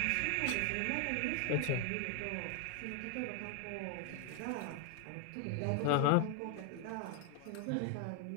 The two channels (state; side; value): different; both; correlation 0.00